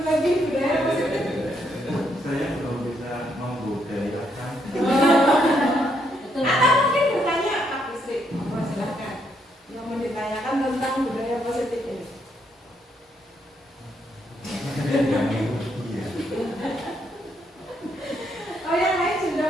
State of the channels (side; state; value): both; normal; correlation 0.74